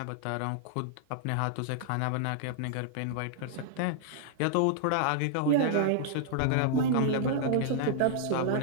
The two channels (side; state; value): both; different; correlation -0.01